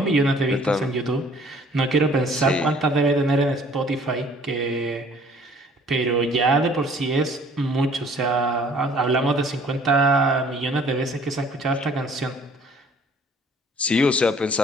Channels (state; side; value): normal; both; correlation 0.55